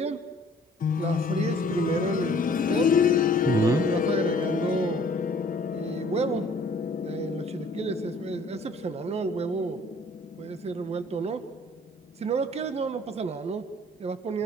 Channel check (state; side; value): normal; both; correlation 0.56